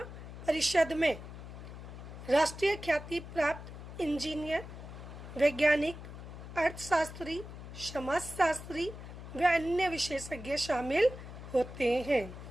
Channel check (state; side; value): noise; left; hum, 12 dB below the sound